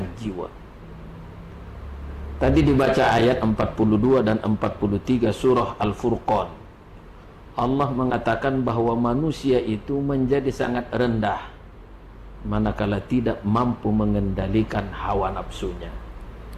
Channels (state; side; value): identical; both; correlation 1.00